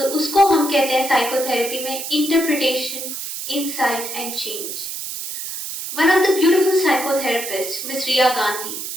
उसको हम कहते हैं psychotherapy में interpretation, insight and change. One of the beautiful psychotherapists, Ms. Ria Gandhi,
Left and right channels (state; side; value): noise; right; hiss, 6 dB below the sound